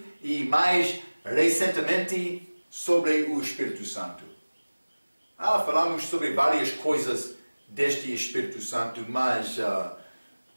e mais recentemente sobre o Espírito Santo. Falamos sobre várias coisas deste Espírito Santo, mas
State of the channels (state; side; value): inverted; both; correlation -1.00